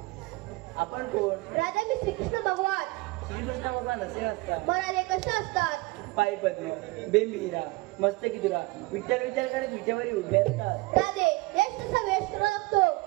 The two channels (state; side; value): quieter; left; 23.1 dB